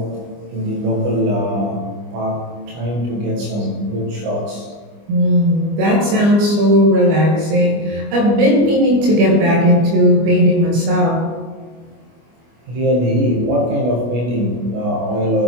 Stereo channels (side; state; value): left; late; 25 ms